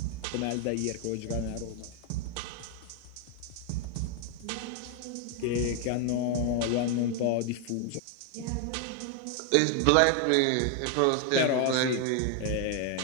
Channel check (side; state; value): both; different; correlation 0.01